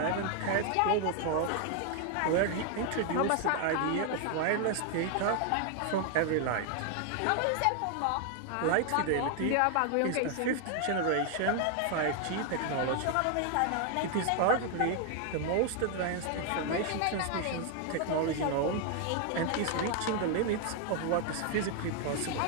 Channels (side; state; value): both; different; correlation 0.00